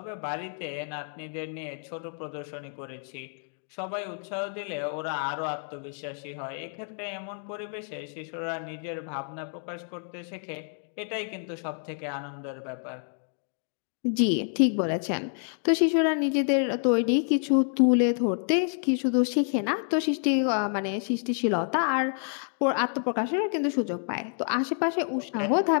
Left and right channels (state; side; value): silent; right; 59 dB below the other